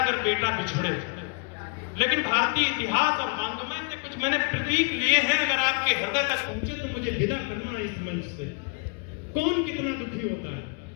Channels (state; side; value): quieter; right; 32.6 dB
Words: अगर बेटा बिछड़े, लेकिन भारतीय इतिहास और वांग्मय से कुछ मैंने प्रतीक लिए हैं। अगर आपके हृदय तक पहुंचे तो मुझे विदा करना है इस मंच से। कौन कितना दुखी होता है।